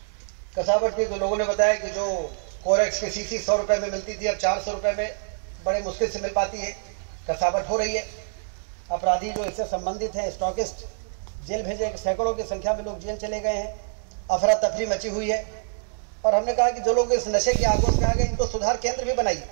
कसावट की तो लोगों ने बताया कि जो कोरेक्स की शीशी 100 रुपए में मिलती थी, अब 400 रुपए में बड़े मुश्किल से मिल पाती है। कसावट हो रही है। अपराधी जो इससे संबंधित हैं, स्टॉकिस्ट, जेल भेजे, सैकड़ों की संख्या में लोग जेल चले गए हैं। अफरा तफरी मची हुई है। और हमने कहा कि जो लोग इस नशे की आगोश में आ गए, इनको सुधार केंद्र भी बनाइए,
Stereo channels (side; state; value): left; silent; digital silence